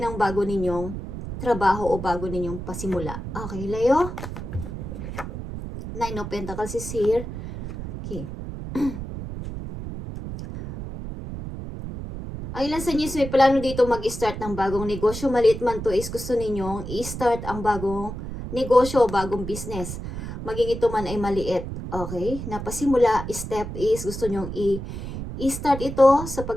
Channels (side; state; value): right; noise; rumble, 8 dB below the sound